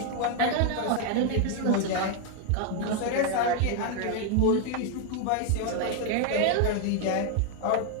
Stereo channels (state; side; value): different; both; correlation 0.00